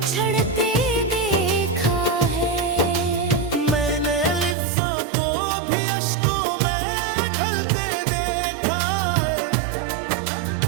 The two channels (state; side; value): drops out; left; at 4.5 s